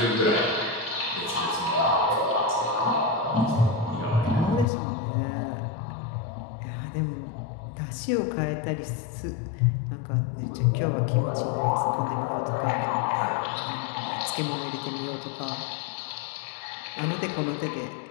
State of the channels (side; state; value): right; drops out; at 4.7 s